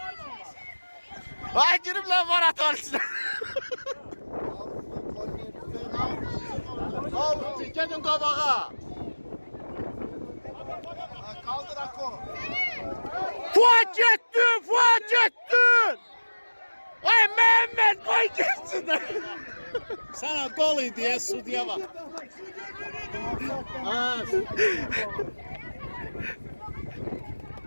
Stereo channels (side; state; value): both; inverted; correlation -1.00